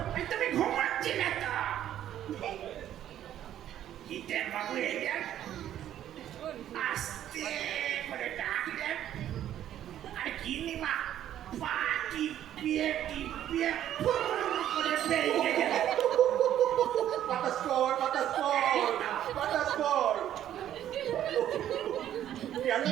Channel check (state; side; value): quieter; left; 11.4 dB